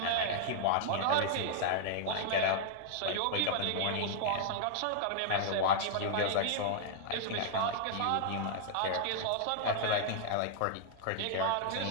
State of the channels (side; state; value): both; different; correlation 0.00